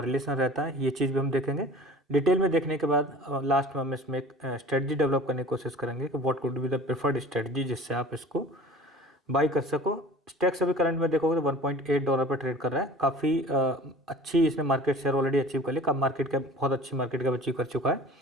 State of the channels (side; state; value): both; normal; correlation 0.43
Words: रहता है, ये चीज़ भी हम देखेंगे। डिटेल में देखने के बाद लास्ट में हम इसमें एक स्ट्रेटजी डेवलप करने की कोशिश करेंगे कि what could be the preferred strategy जिससे आप इसको बाई कर सको। स्टैक्स अभी करंट में देखोगे तो $1.8 पर ट्रेड कर रहा है। काफ़ी अच्छी इसने मार्केट शेयर ऑलरेडी अचीव कर ली। कब मार्केट कैप बहुत अच्छी मार्केट कैप अचीव कर चुका है।